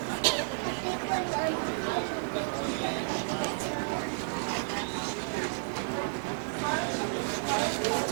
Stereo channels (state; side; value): silent; left; digital silence